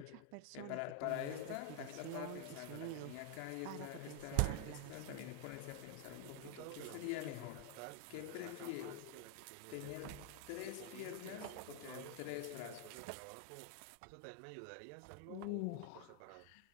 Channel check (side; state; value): both; different; correlation 0.00